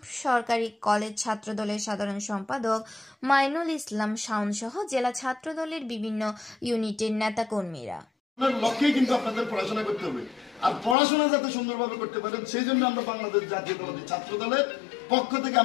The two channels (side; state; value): right; drops out; at 11.0 s